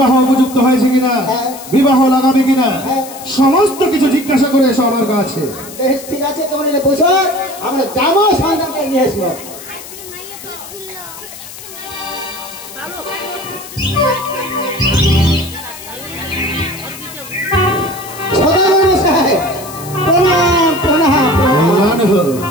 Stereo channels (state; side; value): noise; left; hiss, 14 dB below the sound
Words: উপযুক্ত হয়েছে কিনা, হ্যাঁ। বিবাহ লাগাবে কিনা, হ্যাঁ। সমস্ত কিছু জিজ্ঞাসা করে এসো আমার কাছে। বেশ ঠিক আছে, তোমরা এনে বসো, আমরা যাবো সন্তানকে নিয়ে আসবো। সদাগর সাহেব প্রণাম প্রণাম প্রণাম। কল্যাণ হোক।